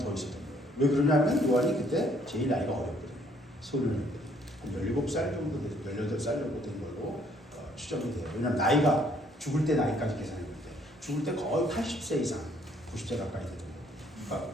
있었던 거예요. 왜 그러냐면 요한이 그때 제일 나이가 어렸거든요. 소년일 때 17살 정도 돼서 18살 정도 된 걸로 추정이 돼요. 왜냐하면 나이가 죽을 때 나이까지 계산했는데 죽을 때 거의 80세 이상, 90세 가까이 되던 거예요.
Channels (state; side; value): normal; both; correlation 0.64